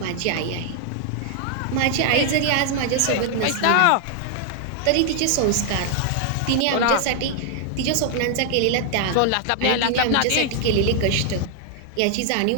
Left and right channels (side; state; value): both; different; correlation 0.00